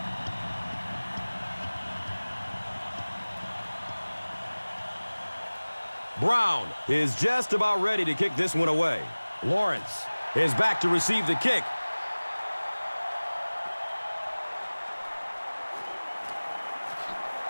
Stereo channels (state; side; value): inverted; both; correlation -1.00